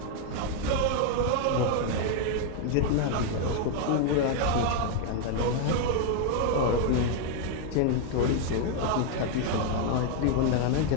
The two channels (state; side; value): different; both; correlation 0.00